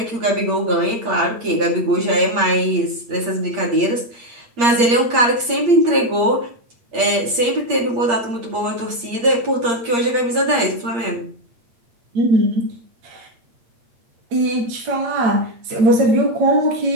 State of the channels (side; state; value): left; late; 8.6 ms